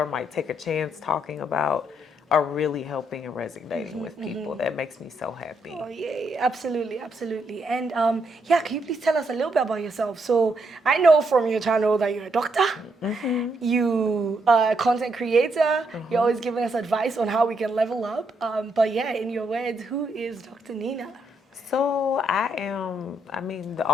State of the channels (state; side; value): normal; both; correlation 0.77